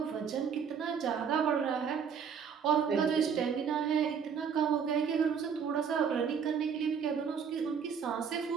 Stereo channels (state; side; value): quieter; left; 6.9 dB